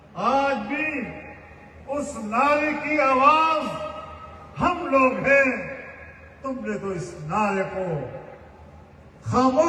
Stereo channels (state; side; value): identical; both; correlation 1.00